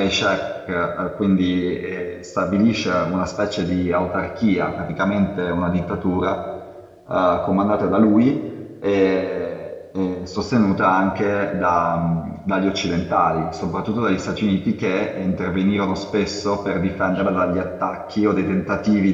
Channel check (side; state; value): both; identical; correlation 1.00